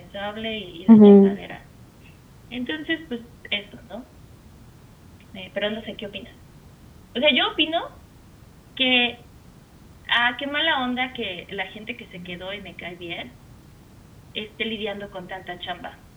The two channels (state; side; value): identical; both; correlation 1.00